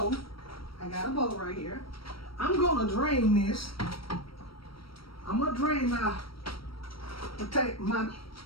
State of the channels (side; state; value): right; late; 0.75 ms